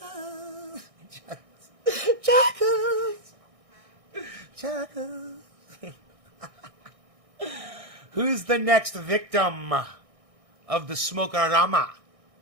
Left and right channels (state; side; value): late; left; 1.6 ms